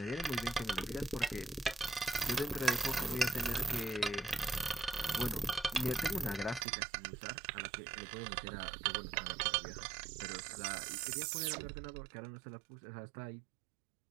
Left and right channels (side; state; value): left; drops out; at 6.7 s